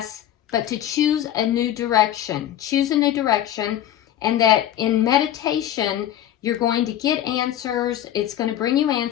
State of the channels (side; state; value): right; quieter; 11.5 dB